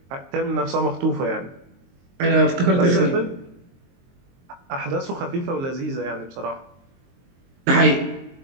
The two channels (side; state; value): left; late; 22 ms